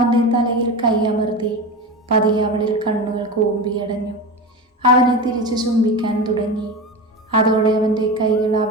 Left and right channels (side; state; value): both; normal; correlation 0.24